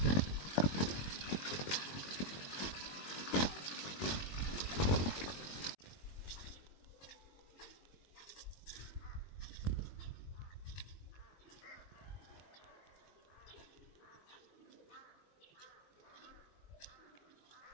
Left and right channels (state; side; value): late; right; 21 ms